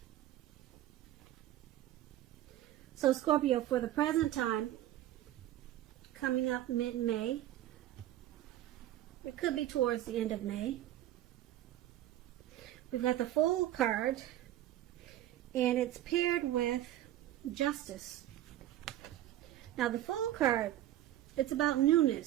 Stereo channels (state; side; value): quieter; left; 13.3 dB